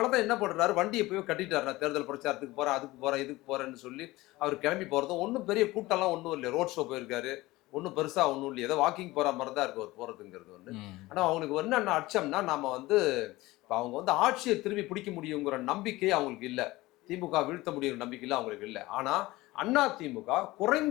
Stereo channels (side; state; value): right; quieter; 19.3 dB